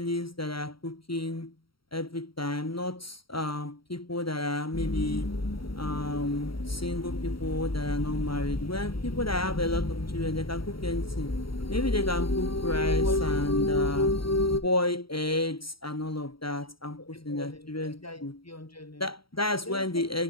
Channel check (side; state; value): right; late; 0.74 ms